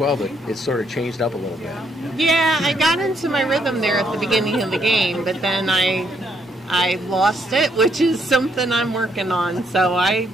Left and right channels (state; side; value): normal; both; correlation 0.73